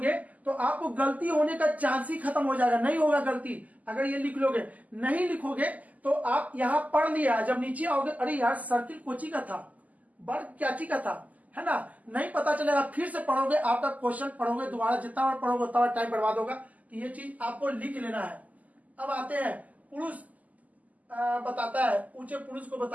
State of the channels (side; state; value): left; late; 0.077 ms